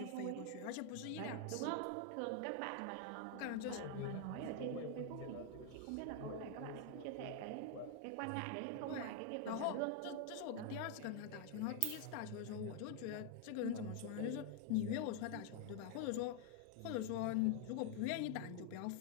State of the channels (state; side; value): different; both; correlation 0.00